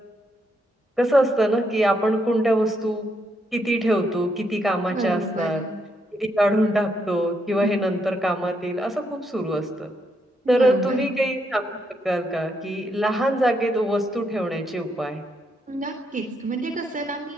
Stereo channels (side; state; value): both; normal; correlation 0.78